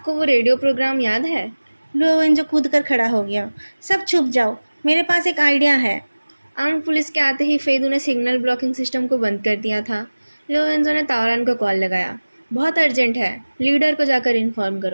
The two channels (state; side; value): inverted; both; correlation -1.00